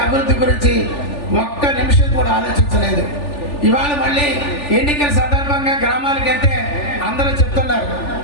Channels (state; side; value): late; right; 3.4 ms